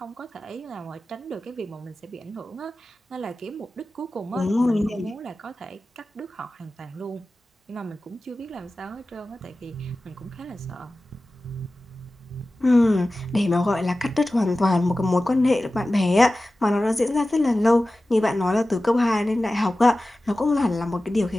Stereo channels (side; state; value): both; normal; correlation 0.96